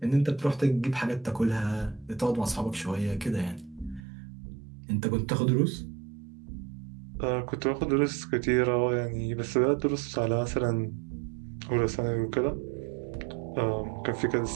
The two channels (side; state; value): left; drops out; at 4.0 s